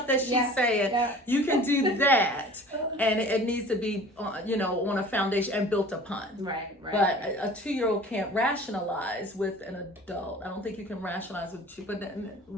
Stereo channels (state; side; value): normal; both; correlation 0.44